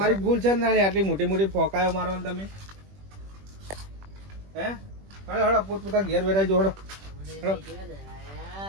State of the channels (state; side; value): late; left; 21 ms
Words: જ ભૂલ છે ને નાની, આટલી મોટી મોટી ફોકાયો મારવાની તમે. હે હળો હળો પોતપોતા ઘેર વેરાઈ જો હળો હળો.